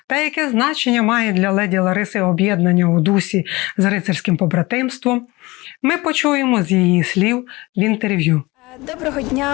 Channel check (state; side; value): quieter; right; 22.1 dB